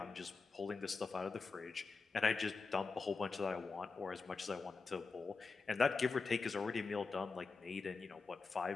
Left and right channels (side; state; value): right; quieter; 4.4 dB